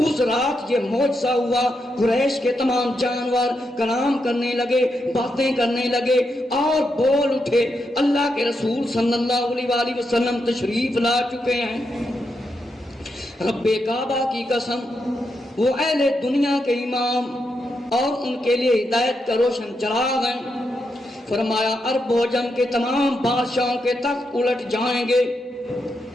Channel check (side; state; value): both; normal; correlation 0.83